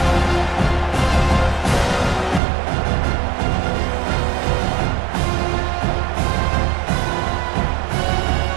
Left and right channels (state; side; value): drops out; left; at 2.4 s